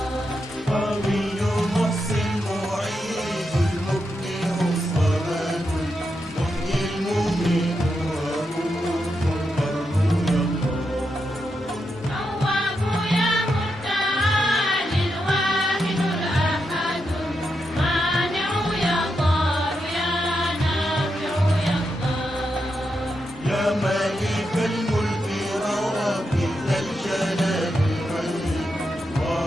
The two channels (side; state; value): both; normal; correlation 0.85